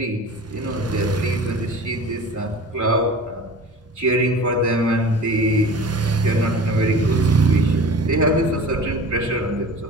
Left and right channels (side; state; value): both; normal; correlation 0.39